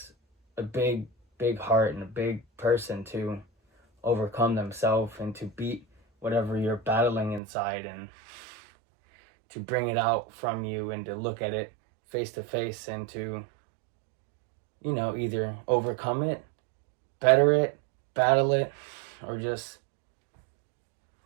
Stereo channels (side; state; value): left; drops out; at 7.4 s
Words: a big heart and a big person to overcome themselves and to beat whatever you're battling inside, and to bring it out from you and to look at it face to face and to, either overcome it, better it, battle it, or just